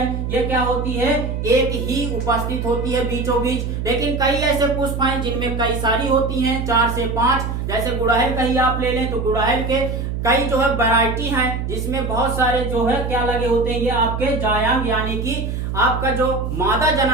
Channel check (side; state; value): right; noise; hum, 3 dB below the sound